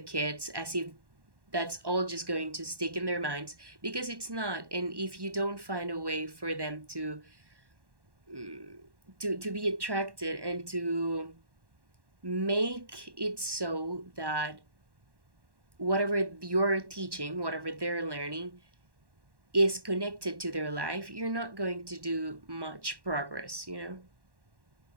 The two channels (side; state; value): left; late; 1.1 ms